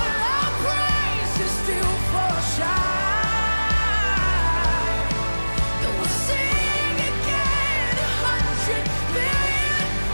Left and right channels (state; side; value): inverted; both; correlation -1.00